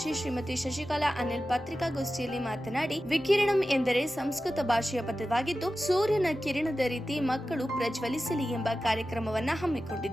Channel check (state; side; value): normal; both; correlation 0.94